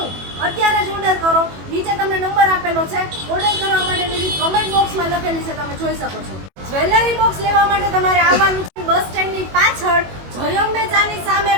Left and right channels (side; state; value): left; late; 21 ms